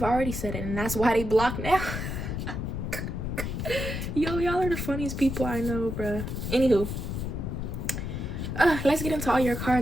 already said it and that's why they block now. Yo, y'all are the funniest people I know, bruh. Anywho, let's get into all your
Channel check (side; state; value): left; noise; rumble, 4 dB below the sound